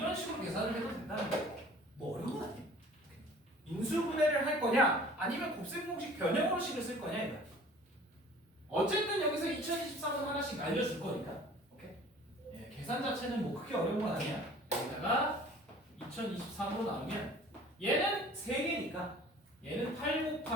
식으로 계산을 해도 된다는 거예요. 뭐 어려운 건 아니에요. 인수분해를 할 거냐 아니면 곱셈 공식 변형으로식을 쓸 거냐 이거야. 어쨌든 여기서 2023은 하나씩 알려줄 거니까. 오케이? 예, 계산 자체는 뭐 크게 어려운 건 아니야. 여기다가 2023으로 나누면 얘는 3개니까 얘는 8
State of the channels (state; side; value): normal; both; correlation 0.48